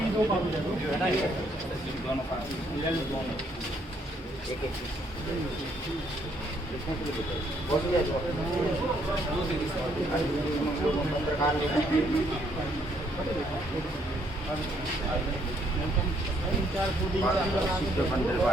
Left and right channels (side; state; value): both; normal; correlation 0.69